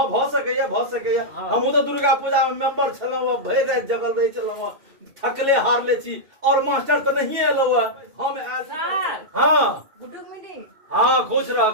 भ सकैया हाँ। हम तो दुर्गा पूजा में मेंबर छलौ भरि रात जगल रहे छलौ थकले हार ले छी और मास्टर तो नहीं एलो हम आयल सर हाँ गुड मीटिंग हाँ खुश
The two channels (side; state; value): left; late; 2.7 ms